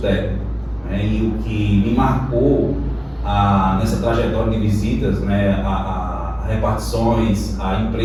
técnico. E o que me marcou nessa trajetória de visitas, a repartições, a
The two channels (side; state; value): both; identical; correlation 1.00